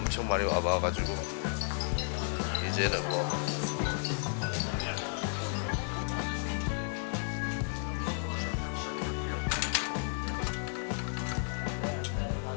많이 와봐가지고 이제는 뭐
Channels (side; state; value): right; silent; 56 dB below the other